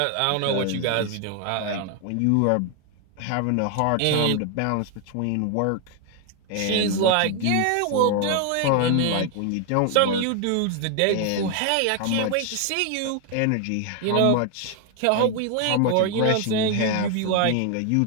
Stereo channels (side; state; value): both; different; correlation 0.01